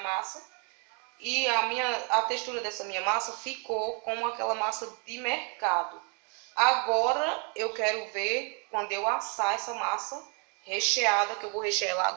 E a textura dessa minha massa ficou como aquela massa de mercado. Agora eu quero ver quando eu assar essa massa recheada, que eu vou rechear ela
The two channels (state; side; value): quieter; left; 37.5 dB